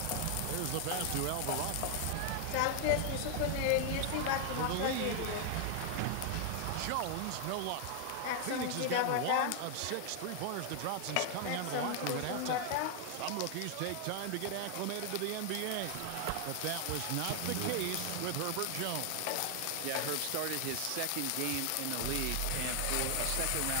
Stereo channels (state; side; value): different; both; correlation 0.00